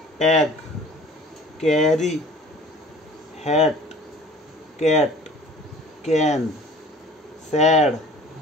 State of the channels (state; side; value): normal; both; correlation 0.48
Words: tag, carry, hat, cat, can, sad,